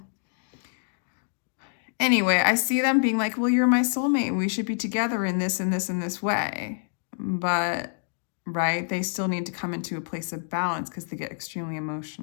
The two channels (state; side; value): silent; right; digital silence